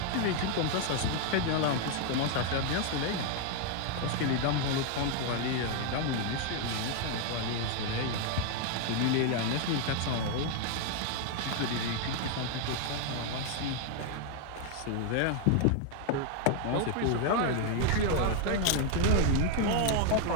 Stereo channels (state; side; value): different; both; correlation 0.00